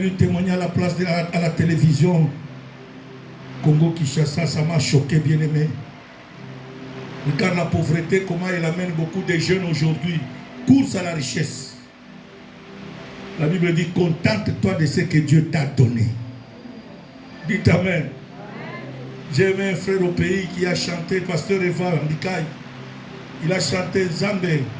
témoigner à la place à la télévision. Congo-Kinshasa, ça m'a choqué, bien aimé. Regarde la pauvreté, comment elle amène beaucoup de jeunes aujourd'hui. Course à la richesse. La Bible dit, contente-toi de ce que Dieu t'a donné. Dites Amen. J'ai aimé un frère au pays qui a chanté, pasteur Eva Ndikaï. Il a chanté Zambé.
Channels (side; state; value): both; identical; correlation 1.00